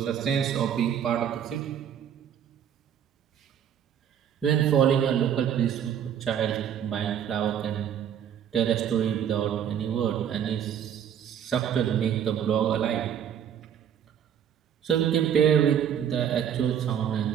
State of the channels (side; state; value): left; quieter; 9.0 dB